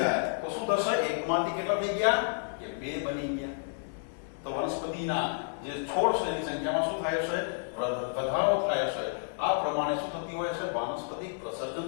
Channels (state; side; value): silent; right; digital silence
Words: તો શું થશે એકમાંથી કેટલા થઈ ગયા કે બે બની ગયા. તો વનસ્પતિના જે છોડ છે એની સંખ્યામાં શું થાય છે વધારો થાય છે. આ પ્રમાણે શું થતી હોય છે વાનસ્પતિક પ્રસર્જન